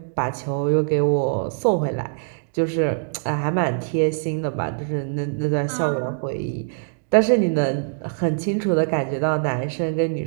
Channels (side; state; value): left; silent; digital silence